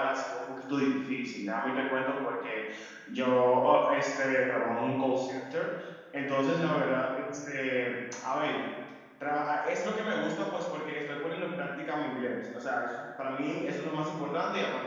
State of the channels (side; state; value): both; identical; correlation 1.00